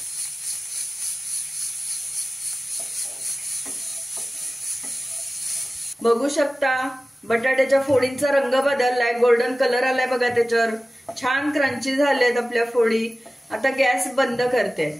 बघू शकता बटाट्याच्या फोडींचा रंग बदललाय, गोल्डन कलर आलाय बघा त्याच्यावर। छान क्रंची झालेत आपल्या फोडी। आता गॅस बंद करते।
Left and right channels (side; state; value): both; normal; correlation 0.96